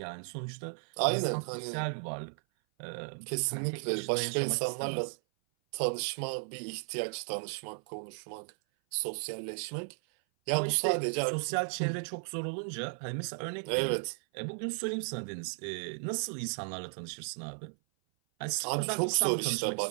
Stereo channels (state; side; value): silent; left; 55 dB below the other